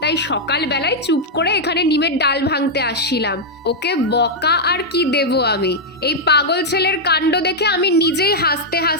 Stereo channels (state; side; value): normal; both; correlation -0.03